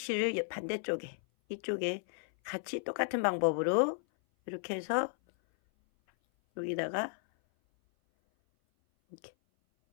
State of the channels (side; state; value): right; silent; 55 dB below the other